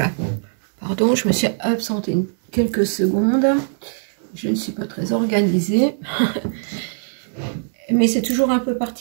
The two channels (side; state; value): left; silent; 65 dB below the other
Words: Pardon, je me suis absentée quelques secondes. Je ne suis pas très organisée. Mais c'est toujours un peu